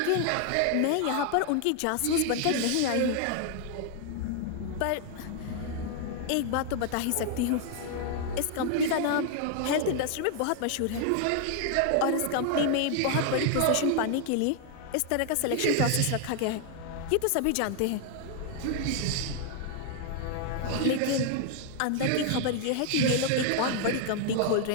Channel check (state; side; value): different; both; correlation 0.00